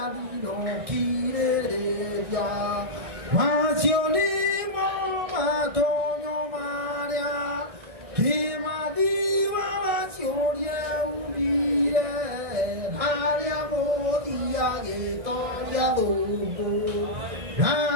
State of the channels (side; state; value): left; late; 1.7 ms